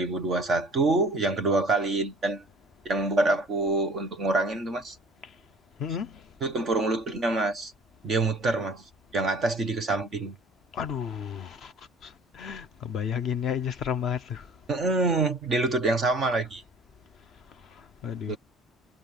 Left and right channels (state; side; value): normal; both; correlation 0.49